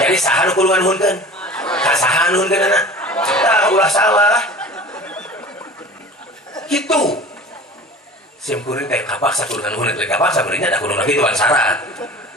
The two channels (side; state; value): both; normal; correlation 0.40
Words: Jadi saha nu kudu nganuhunkeun? Ka saha nuhunkeunna? Tah ulah salah. Kitu. Simkuring kayak kapaksa kudu nganuhun teh kapaksa beureungnya da kudu kitu syarat.